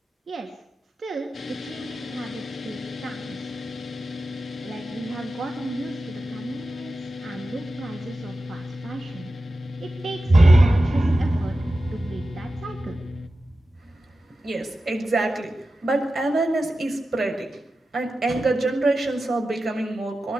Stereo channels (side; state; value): both; normal; correlation 0.93